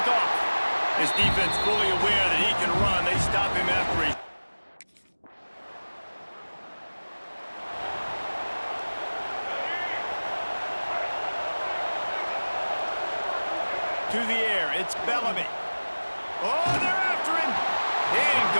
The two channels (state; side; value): inverted; both; correlation -1.00